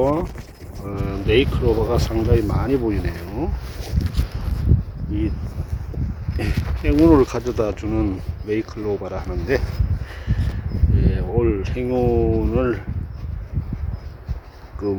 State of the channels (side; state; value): both; identical; correlation 1.00